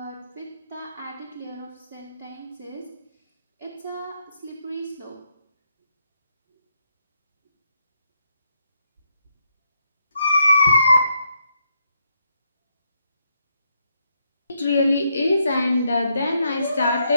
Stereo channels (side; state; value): both; inverted; correlation -0.78